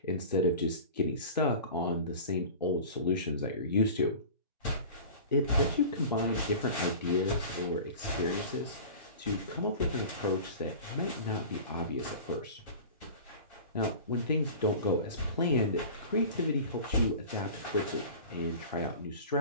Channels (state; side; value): inverted; both; correlation -0.37